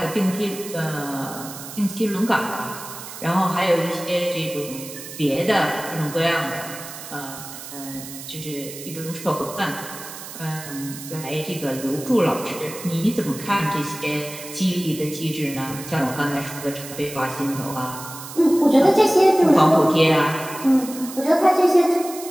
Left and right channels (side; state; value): right; noise; hiss, 12 dB below the sound